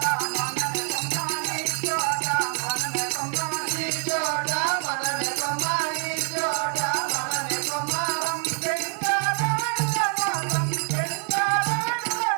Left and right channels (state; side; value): quieter; left; 39.6 dB